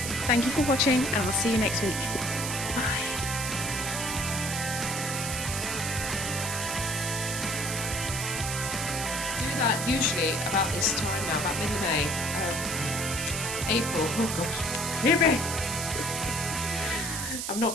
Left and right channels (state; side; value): noise; right; hiss, 4 dB below the sound